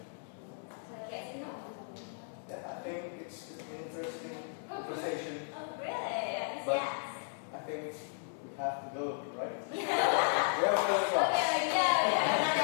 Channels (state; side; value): silent; right; digital silence